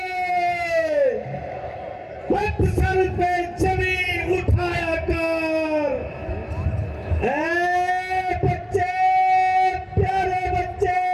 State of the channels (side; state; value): both; identical; correlation 1.00